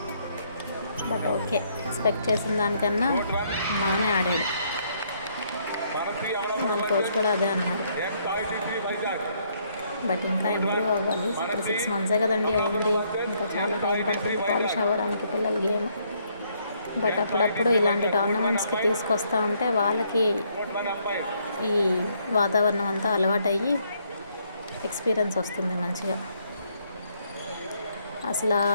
బట్ ఓకే, ఎక్స్పెక్ట్ చేసిన దానికన్నా బాగానే ఆడాడు. వాళ్ళ కోచ్ కూడా అదే అన్నారు. బట్ ఇంకా ఇంప్రూవ్ అవ్వాలి. ఇప్పుడు 6 months కదండి అయింది, ఇంకా చాలా టైం పడుతుంది పాలిష్ అవ్వడానికి పిల్లల గేమ్. బట్ అప్పుడప్పుడు ఇలాంటి టోర్నమెంట్స్కి తీసుకొస్తూ ఉంటే వాళ్ళకి ఈ వాతావరణం అంతా అలవాటయ్యి ఎక్స్పీరియన్స్ వస్తుంది మంచిగా. అసలు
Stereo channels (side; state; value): both; inverted; correlation -0.70